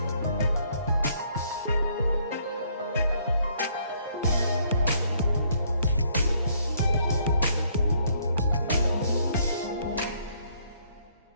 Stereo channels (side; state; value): both; inverted; correlation -0.67